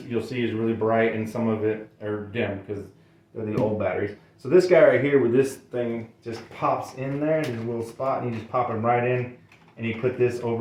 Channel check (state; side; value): identical; both; correlation 1.00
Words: you'll see is really bright and some of it are dim because they're the old batteries. So this guy right here with this thing just pops in there. There's a little spot and you just pop him right in and you put this